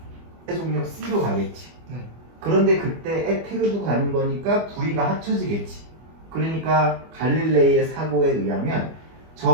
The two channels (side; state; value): left; late; 25 ms